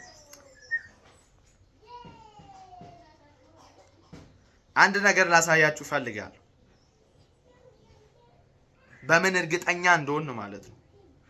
አንድ ነገር ላሳያችሁ ፈልጋለሁ። በምን እርግጠኛ እንደሆን ማለት ነው።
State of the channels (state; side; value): identical; both; correlation 1.00